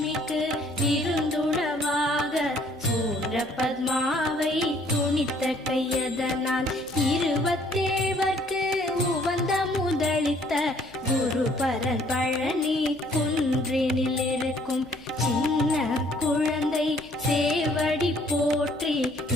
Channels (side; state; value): left; noise; hum, 25 dB below the sound